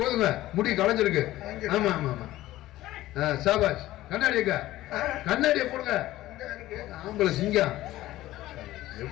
முடி களைஞ்சிருக்கு. ஆமா ஆமா ஆமா. சாபாஷ். கண்ணாடிங்க, கண்ணாடியை போடுங்க. ஆம்பளை சிங்கம்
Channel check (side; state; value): right; quieter; 15.8 dB